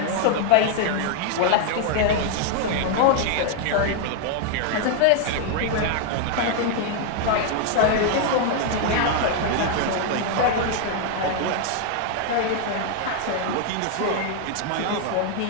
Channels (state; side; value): different; both; correlation 0.00